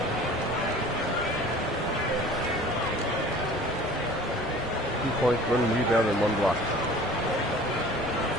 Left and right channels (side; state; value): both; normal; correlation 0.45